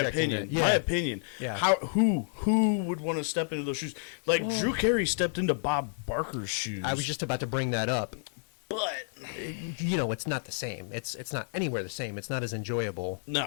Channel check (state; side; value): silent; right; 58 dB below the other